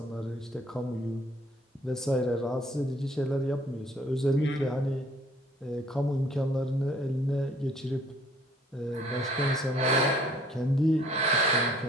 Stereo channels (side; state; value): both; normal; correlation 0.59